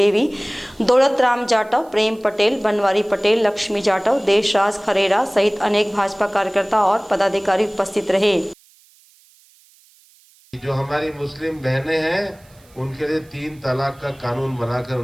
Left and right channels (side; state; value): right; noise; hiss, 30 dB below the sound